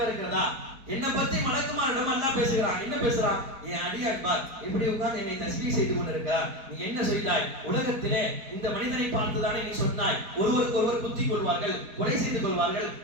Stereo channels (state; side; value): late; left; 4.5 ms